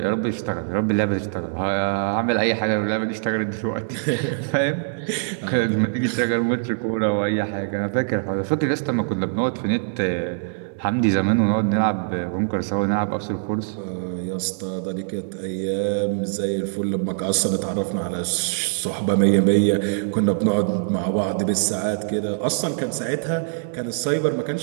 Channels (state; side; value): silent; left; 63 dB below the other